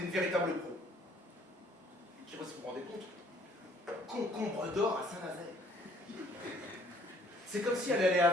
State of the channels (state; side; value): normal; both; correlation 0.60